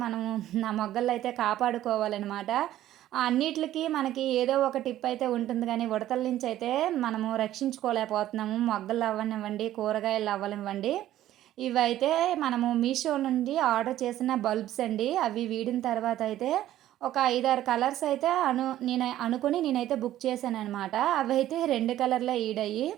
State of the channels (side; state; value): left; quieter; 13.3 dB